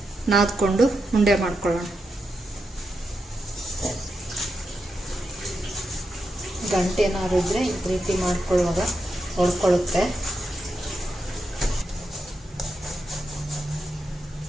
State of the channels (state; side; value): normal; both; correlation 0.86